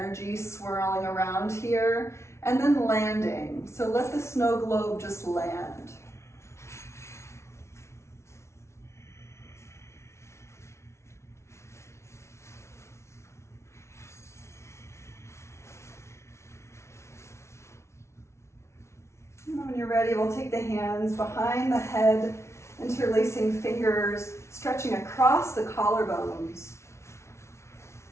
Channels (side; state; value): right; late; 0.13 ms